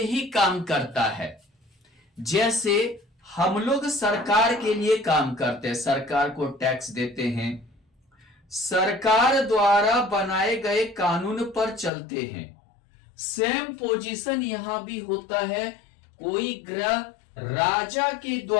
ही काम करता है। जैसे हम लोग सरकार के लिए काम करते हैं, सरकार को टैक्स देते हैं, सरकार द्वारा बनाए गए कानून पर चलते हैं। सेम पोजीशन यहां भी होता है। कोई ग्रह राजा के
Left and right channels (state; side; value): drops out; right; at 11.9 s